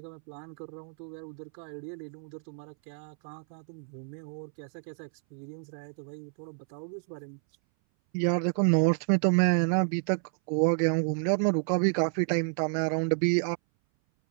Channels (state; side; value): silent; left; 58 dB below the other